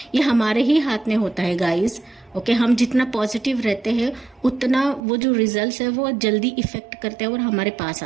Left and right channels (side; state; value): left; drops out; at 5.0 s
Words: ये हमारे ही हाथ में होता है गाइस। ओके हम जितना पॉजिटिव रहते हैं उतना वो जो रिजल्ट्स है वो जल्दी इफेक्ट करते हैं और हमारे पास